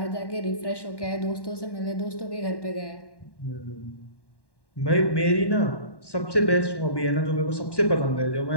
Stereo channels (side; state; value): right; late; 1.1 ms